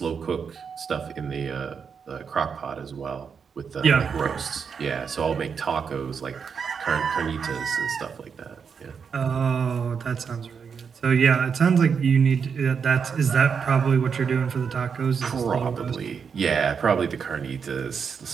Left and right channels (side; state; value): left; quieter; 6.4 dB